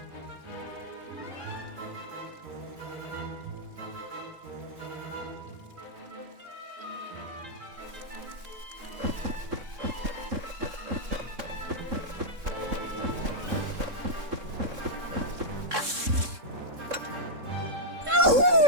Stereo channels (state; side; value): late; left; 3.7 ms